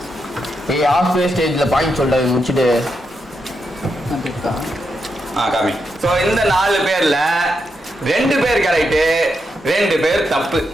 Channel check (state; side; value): normal; both; correlation 0.83